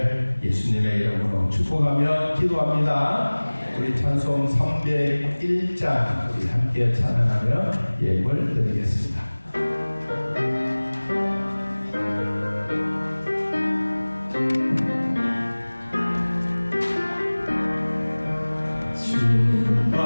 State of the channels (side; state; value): both; inverted; correlation -1.00